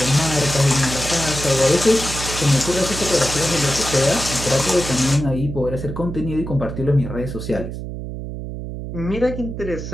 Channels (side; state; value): right; noise; hum, 7 dB below the sound